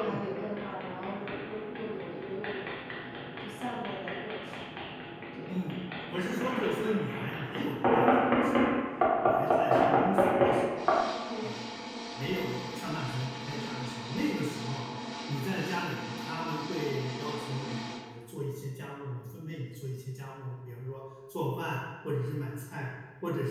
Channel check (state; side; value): identical; both; correlation 1.00